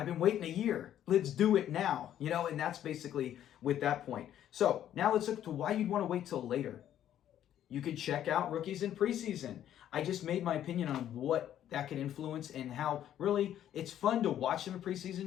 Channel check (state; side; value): quieter; right; 11.1 dB